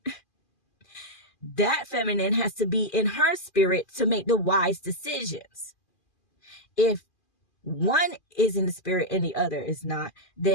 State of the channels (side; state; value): right; late; 2.4 ms